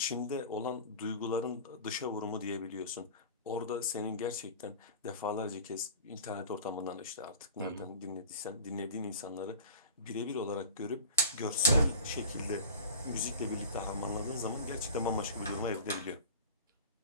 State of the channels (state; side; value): inverted; both; correlation -0.37